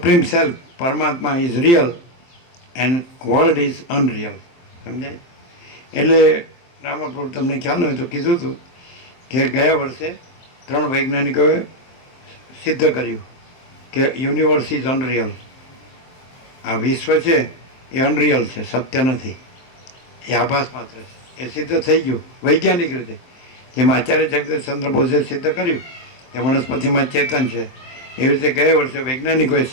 સેલ્ફ પરમાત્મા is real and world is unreal. સમજાય? એટલે રામાપ્રભુ તમને ખ્યાલ હોય તો કીધું હતું કે ગયા વર્ષે 3 વૈજ્ઞાનિકોએ સિદ્ધ કર્યું કે યુનિવર્સ ઇઝ અનરિયલ. આ વિશ્વ છે એ અનરિયલ છે, સત્ય નથી, એ આભાસ માત્ર છે. એ સિદ્ધ થઈ ગયું વૈજ્ઞાનિક રીતે. જેમ આચાર્ય જગદીશચંદ્ર બોઝે સિદ્ધ કર્યું કે વનસ્પતિમાં ચેતન છે, એવી રીતે ગયા વર્ષે વૈજ્ઞાનિકોએ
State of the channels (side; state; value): right; late; 23 ms